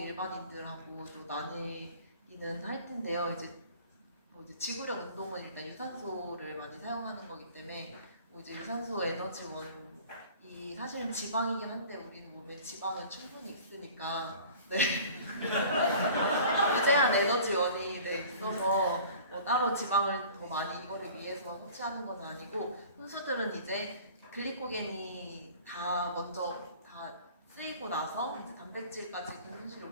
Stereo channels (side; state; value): both; inverted; correlation -0.44